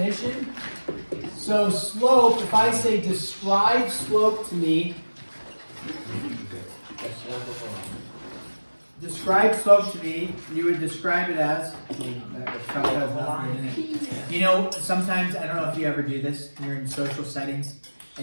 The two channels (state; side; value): inverted; both; correlation -1.00